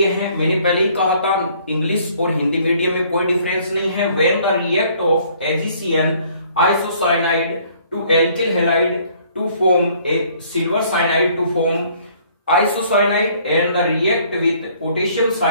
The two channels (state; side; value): inverted; both; correlation -0.60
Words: है। मैंने पहले ही कहा था इंग्लिश और हिंदी मीडियम में कोई डिफरेंस नहीं है। When the react of AgCN isocyanide to alkyl halide to form a silver cyanide to form isocyanide and the react with potassium